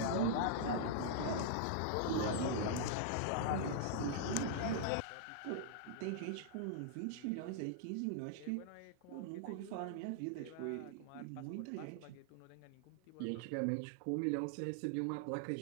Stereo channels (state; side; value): different; both; correlation -0.01